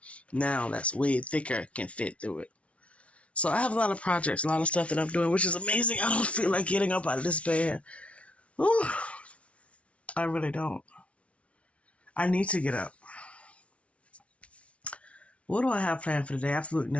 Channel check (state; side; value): late; right; 0.063 ms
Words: now that's way thicker can fit through it. So I have a lot of projects, a lot of stuff that I'm doing, which is amazing. I don't feel like getting up out of this bed. Ooh, I really don't. I need to get up. What do I have planned for today? Absolutely